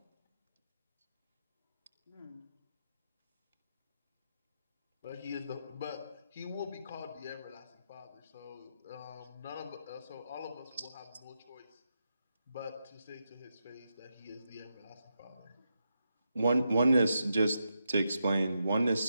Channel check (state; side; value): inverted; both; correlation -0.85